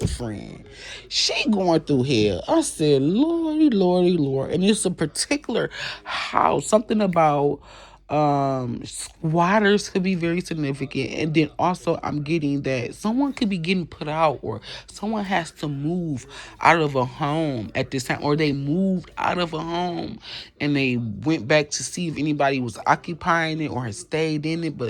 friend. She going through hell. I said, Lordy, Lordy, Lord. And it's a particular house. Something about squatters could be very significant, and then also I'm getting that someone could be getting put out or someone has to move out of a home at this time, or they moved out of a home and they went back to see if anybody was occupying it or had stayed in it,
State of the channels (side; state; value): both; identical; correlation 1.00